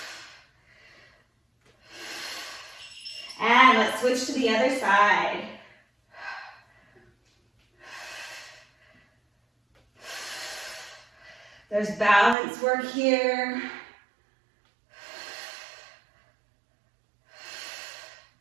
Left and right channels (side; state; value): left; drops out; at 12.4 s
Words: And let's switch to the other side. There's balance work here.